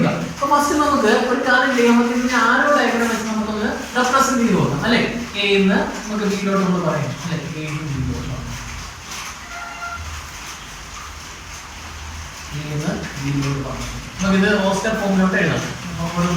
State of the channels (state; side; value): identical; both; correlation 1.00